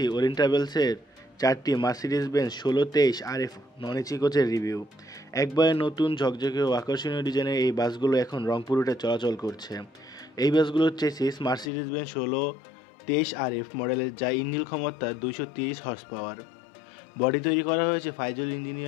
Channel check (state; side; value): drops out; right; at 11.7 s